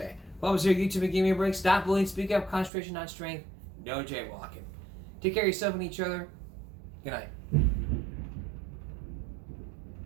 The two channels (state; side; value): drops out; left; at 2.7 s